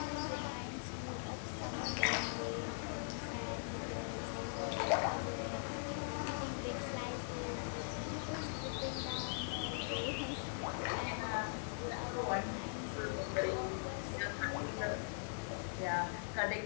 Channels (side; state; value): right; silent; 50 dB below the other